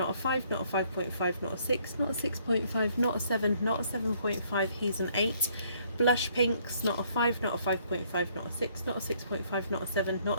a 5, not a 5.5, not a 6, not a 6.5, not a 7, not a 7.5, he's an 8. Blush pinks, not a 5, not a 5.5, not a 6, not a 6.5, not a 7, not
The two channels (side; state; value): both; inverted; correlation -0.66